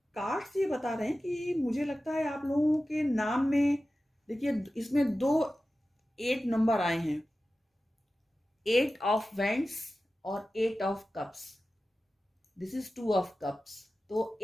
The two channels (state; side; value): normal; both; correlation 0.94